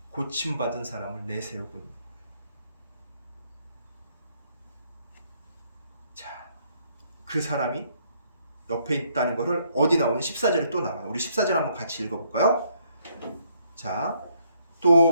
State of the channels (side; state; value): both; inverted; correlation -0.70